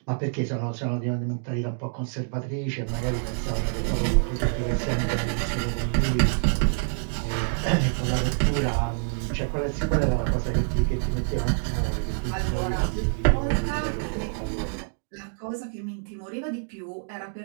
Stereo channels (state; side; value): silent; left; digital silence